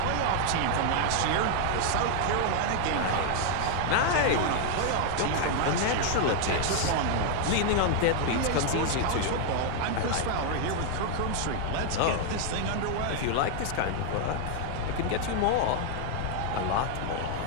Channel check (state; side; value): different; both; correlation 0.00